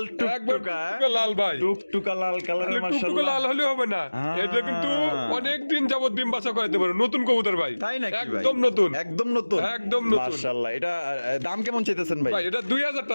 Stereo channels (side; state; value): both; inverted; correlation -1.00